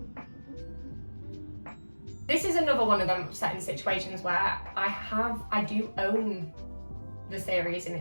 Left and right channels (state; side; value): inverted; both; correlation -1.00